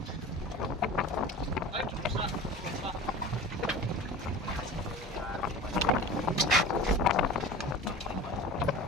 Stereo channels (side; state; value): both; normal; correlation 0.36